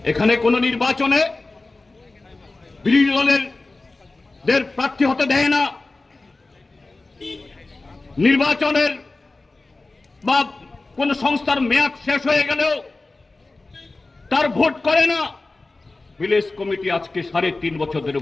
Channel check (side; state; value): right; quieter; 3.3 dB